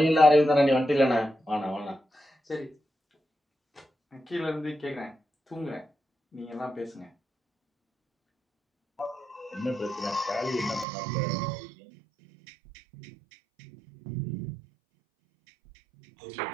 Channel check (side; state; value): left; drops out; at 10.9 s